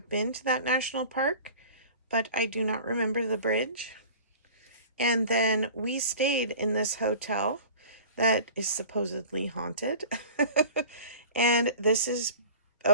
been to that national park, but I do not remember the bridge. And then we stayed in this hotel that is supposedly haunted. And this is,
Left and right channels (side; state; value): both; inverted; correlation -0.41